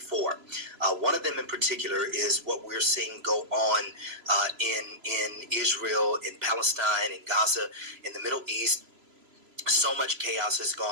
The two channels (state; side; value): late; left; 3.0 ms